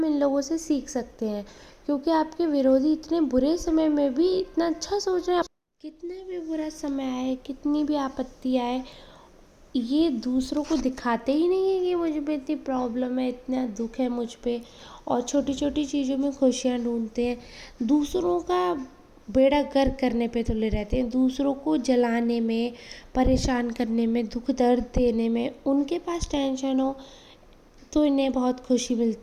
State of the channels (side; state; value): both; identical; correlation 1.00